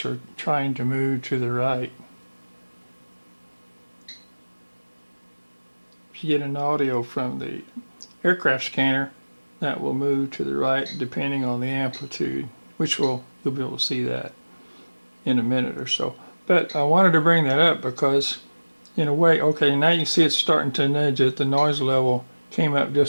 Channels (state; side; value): inverted; both; correlation -1.00